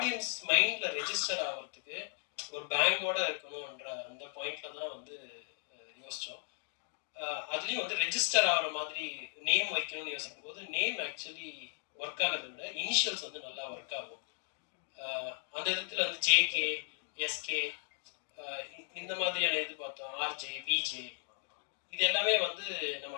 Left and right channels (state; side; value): silent; right; 54 dB below the other